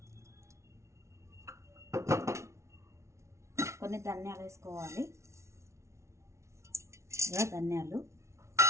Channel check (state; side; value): late; left; 0.13 ms